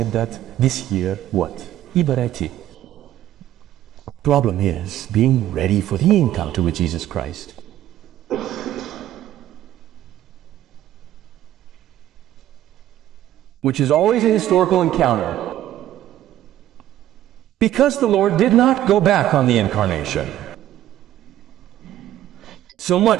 that this year, what? Ibarati. Problem is being ready for the encounter with Jesus Christ. Which is always a historical encounter. Because the Lord did not go back on the incarnation. So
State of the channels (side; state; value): left; quieter; 12.9 dB